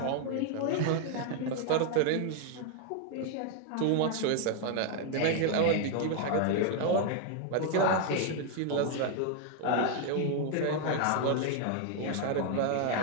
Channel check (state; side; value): different; both; correlation 0.00